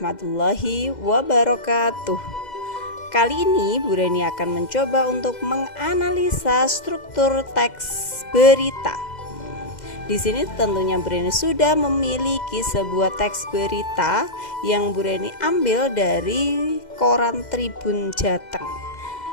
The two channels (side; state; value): right; late; 2.1 ms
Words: wabarakatuh. Kali ini Bu Reni akan mencoba untuk menganalisa struktur teks berita. Di sini tentunya Bu Reni sudah memiliki sebuah teks berita yang Bu Reni ambil dari koran Tribun Jateng